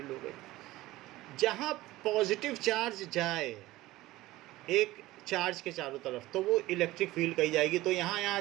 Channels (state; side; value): quieter; left; 17.6 dB